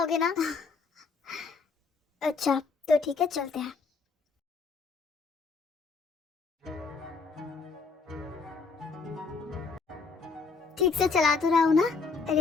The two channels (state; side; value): quieter; right; 4.7 dB